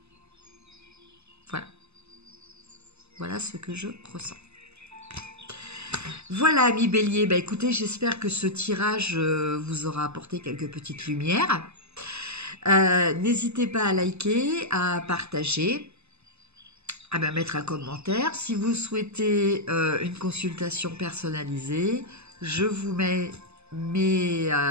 Voilà. Voilà ce que je ressens. Voilà, amis Bélier. Bah, écoutez, j'espère que ce tirage vous aura apporté quelques petites lumières. N'hésitez pas à liker, à partager, à mettre un commentaire. Si vous souhaitez une consultation personnalisée, je vous mets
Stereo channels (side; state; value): left; late; 0.80 ms